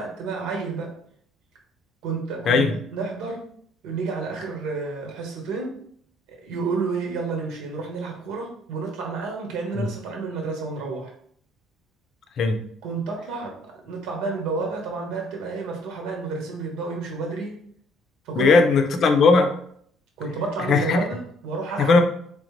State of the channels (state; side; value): normal; both; correlation 0.64